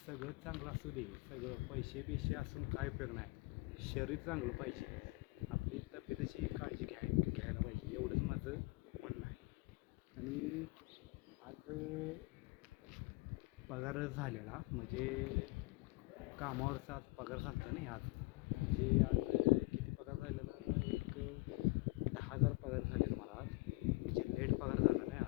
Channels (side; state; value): right; quieter; 23.7 dB